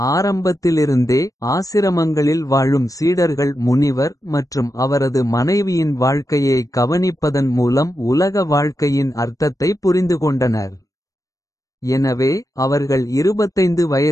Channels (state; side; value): late; right; 0.16 ms